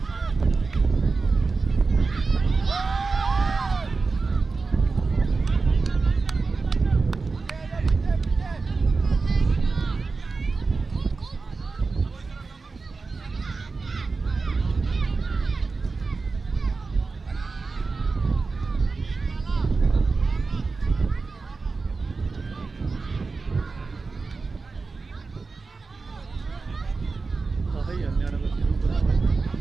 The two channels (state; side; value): quieter; left; 4.2 dB